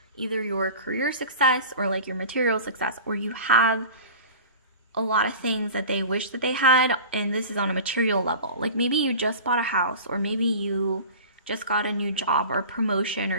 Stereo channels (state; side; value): inverted; both; correlation -0.37